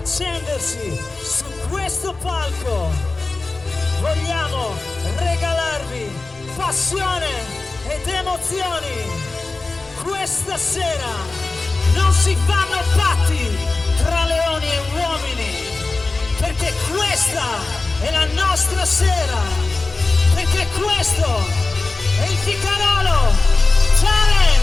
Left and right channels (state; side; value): quieter; right; 3.5 dB